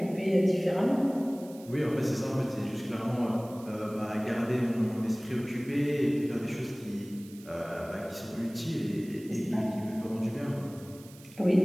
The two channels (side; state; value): right; noise; hiss, 22 dB below the sound